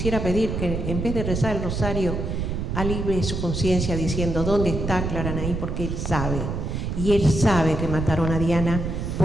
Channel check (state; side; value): noise; right; rumble, 3 dB below the sound